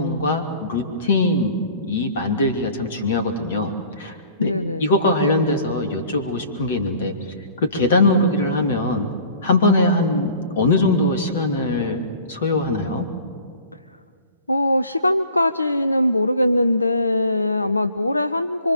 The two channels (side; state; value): both; inverted; correlation -0.48